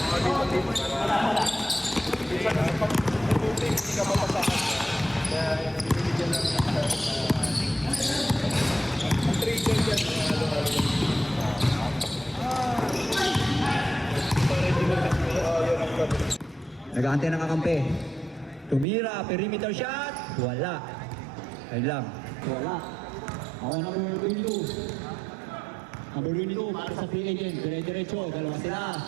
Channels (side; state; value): left; drops out; at 18.9 s